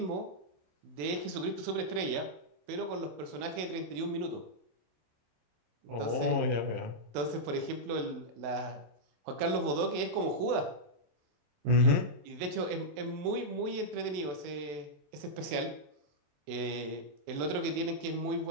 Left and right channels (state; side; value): late; left; 27 ms